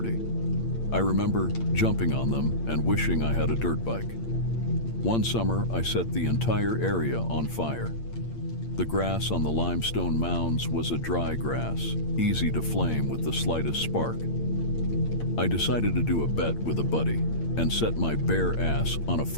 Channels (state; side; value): late; right; 8.7 ms